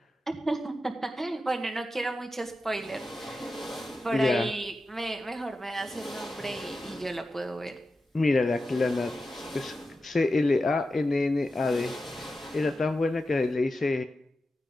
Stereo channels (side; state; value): both; normal; correlation 0.91